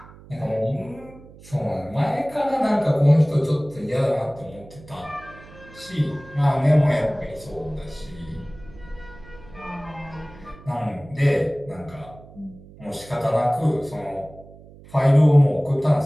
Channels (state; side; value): noise; right; hum, 21 dB below the sound